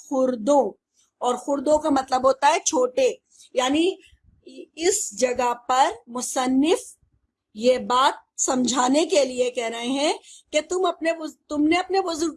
اور خردوں کا مطلب ہوتا ہے چھوٹے. یعنی اس جگہ پر مصنف یہ بات سمجھانے کے لیے کہہ رہے ہیں کہ تم نے اپنے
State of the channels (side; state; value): both; identical; correlation 1.00